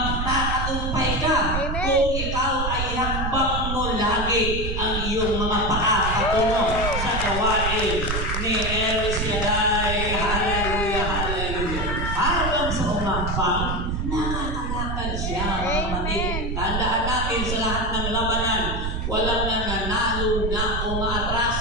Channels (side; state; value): right; noise; rumble, 2 dB below the sound